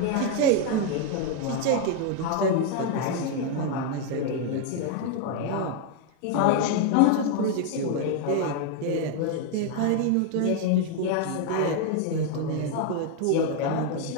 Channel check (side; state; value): both; different; correlation 0.01